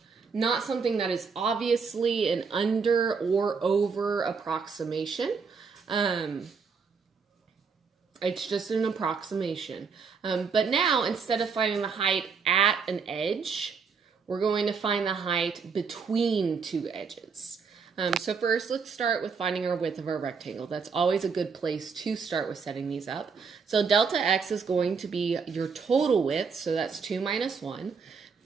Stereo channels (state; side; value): quieter; left; 5.5 dB